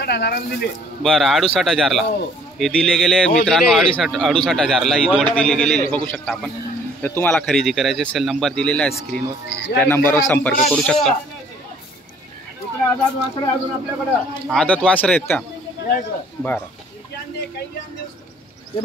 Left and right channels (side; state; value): both; normal; correlation 0.57